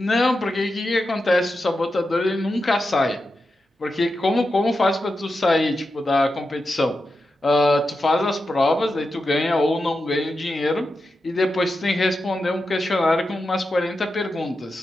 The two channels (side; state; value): both; normal; correlation 0.89